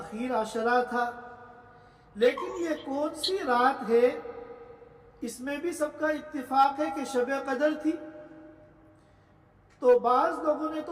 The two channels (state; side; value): identical; both; correlation 1.00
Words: عشرہ تھا، لیکن یہ کون سی رات ہے؟ اس میں بھی سب کا اتفاق ہے کہ شب قدر تھی۔ تو بعض لوگوں نے